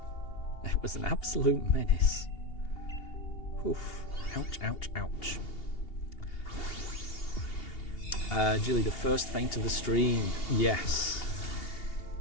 It was an absolute menace. Oof. Ouch, ouch, ouch. Jilly, the first feint of the stream. Yes.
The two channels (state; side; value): late; right; 2.8 ms